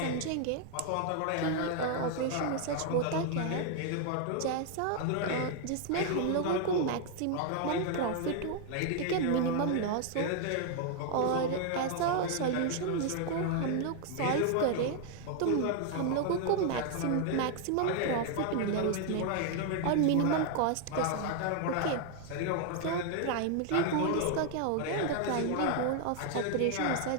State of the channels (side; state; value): both; different; correlation 0.00